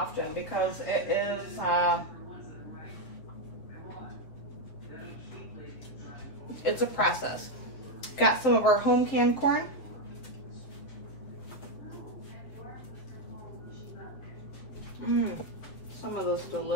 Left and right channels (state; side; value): late; right; 7.9 ms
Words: because it is it's a process. Got some of our home canned corn. Some of this